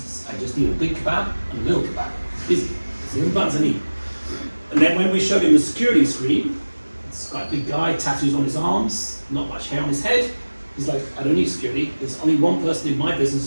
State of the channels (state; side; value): inverted; both; correlation -1.00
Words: I just need a big kebab and a little kebab. Easy. It's the only buttons I need. And then when we showed him the security screen, it's quite a big guy, tattoos on his arms, not much hair on his head. He's like, I don't need security. There's only one person in my business